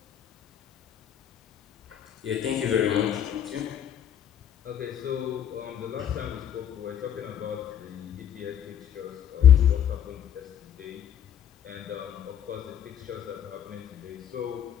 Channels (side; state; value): right; quieter; 9.5 dB